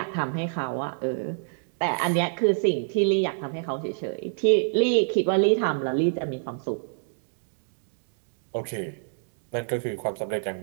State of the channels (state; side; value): silent; left; digital silence